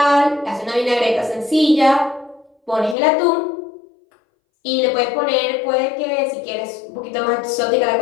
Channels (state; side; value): drops out; right; at 3.0 s